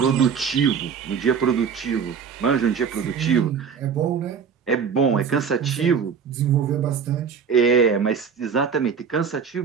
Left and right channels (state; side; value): quieter; left; 6.6 dB